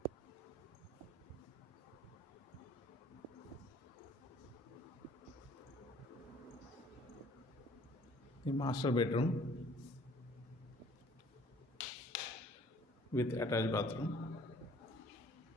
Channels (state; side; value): normal; both; correlation 0.55